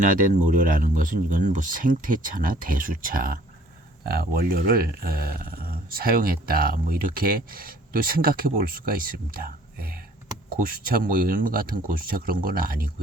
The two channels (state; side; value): normal; both; correlation 0.56